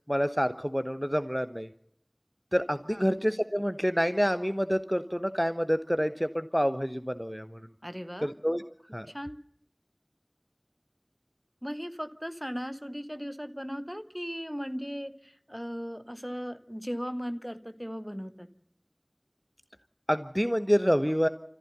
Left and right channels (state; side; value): identical; both; correlation 1.00